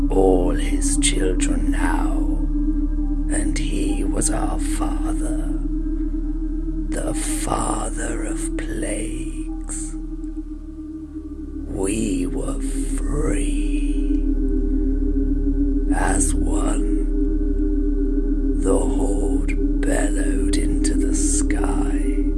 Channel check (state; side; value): identical; both; correlation 1.00